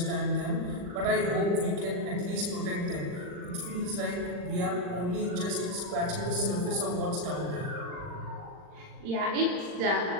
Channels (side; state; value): left; late; 39 ms